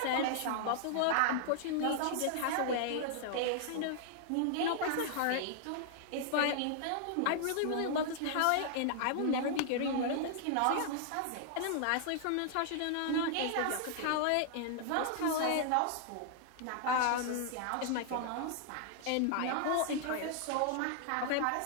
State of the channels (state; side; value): different; both; correlation -0.01